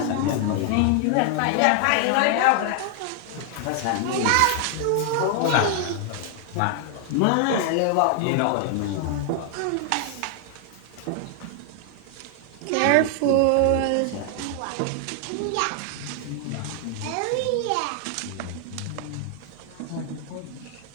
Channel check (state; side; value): different; both; correlation 0.00